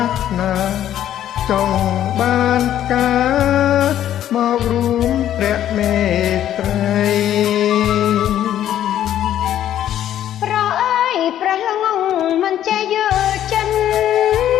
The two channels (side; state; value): right; quieter; 11.4 dB